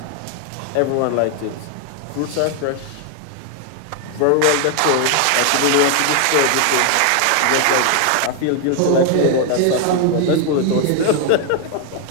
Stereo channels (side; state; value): both; different; correlation 0.00